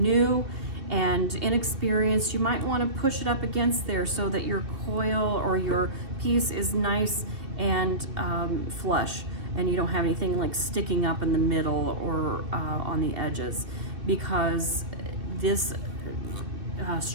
and inexperienced, you might want to push it up against there so that your coil or your piece is nice and flush, and you don't have anything like sticking up in the middle or on the edges, because this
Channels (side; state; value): left; late; 2.7 ms